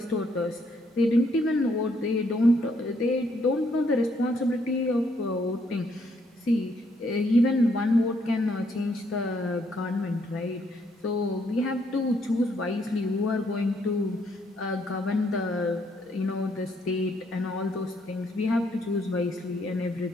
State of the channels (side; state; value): both; normal; correlation 0.71